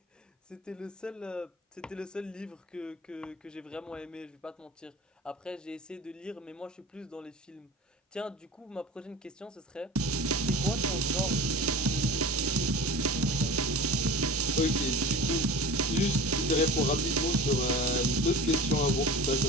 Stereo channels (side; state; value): both; normal; correlation 0.36